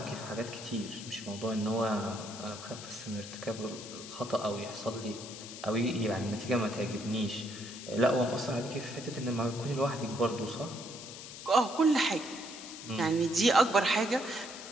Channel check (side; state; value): left; noise; hiss, 12 dB below the sound